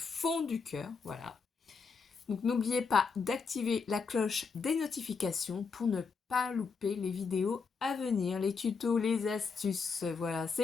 du cœur, voilà. Donc n'oubliez pas d'activer la cloche des notifications pour ne pas louper les vidéos à venir, les tutos, les astuces. Voilà,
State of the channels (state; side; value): quieter; right; 5.2 dB